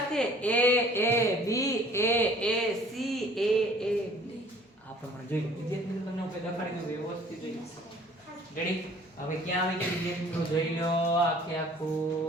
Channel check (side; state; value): both; normal; correlation 0.53